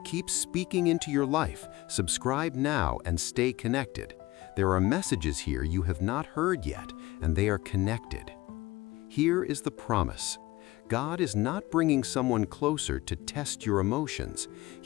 speaking into your life, subscribe now and stay connected. There are messages here you have not heard yet, and they are connected. Here is the promise. God is not bringing someone closer to test your emotions.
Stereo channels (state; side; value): quieter; right; 19.3 dB